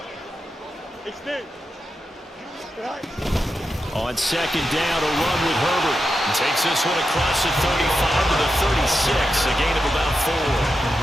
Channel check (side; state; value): both; normal; correlation 0.88